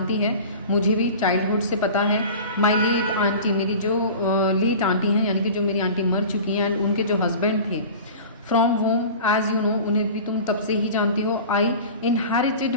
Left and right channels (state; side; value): inverted; both; correlation -0.37